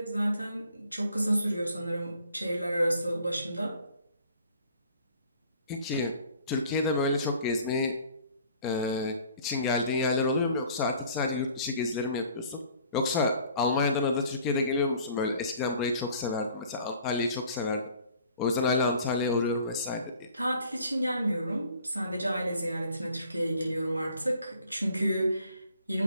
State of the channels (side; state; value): both; inverted; correlation -0.53